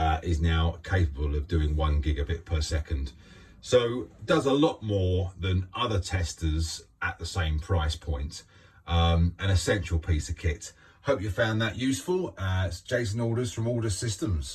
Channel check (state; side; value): identical; both; correlation 1.00